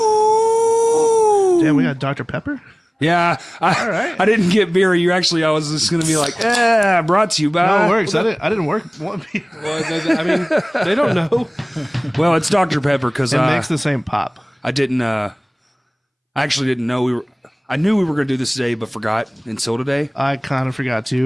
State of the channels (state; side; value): identical; both; correlation 1.00